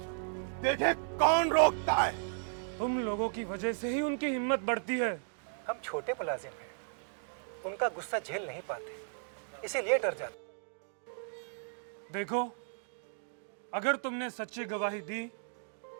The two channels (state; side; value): silent; left; digital silence